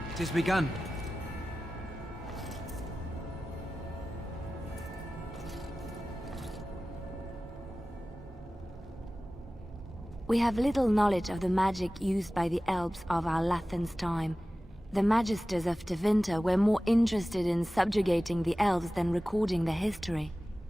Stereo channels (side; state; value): both; normal; correlation 0.96